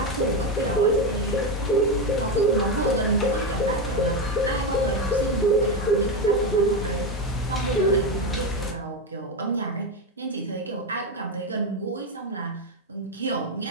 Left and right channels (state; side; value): normal; both; correlation 0.12